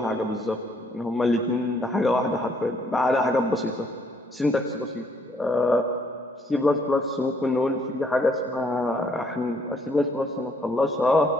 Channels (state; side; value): normal; both; correlation 0.67